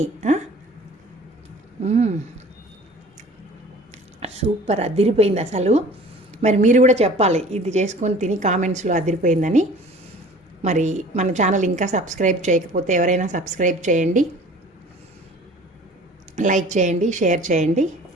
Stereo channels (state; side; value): normal; both; correlation 0.46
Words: సూపర్ అదిరిపోయింది అసలు. మరి మీరు కూడా చెప్పాలి ఇది చేసుకొని తిని కామెంట్స్లో అదిరిపోయిందని. మరి మన ఛానల్ ఇంకా సబ్స్క్రైబ్ చేయకపోతే ఎవరైనా సబ్స్క్రైబ్ చేయండి, లైక్ చేయండి, షేర్ చేయండి.